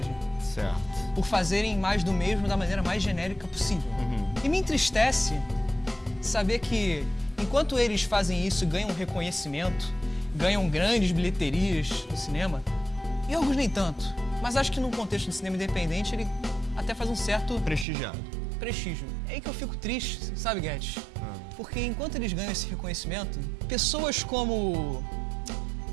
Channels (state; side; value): drops out; left; at 17.9 s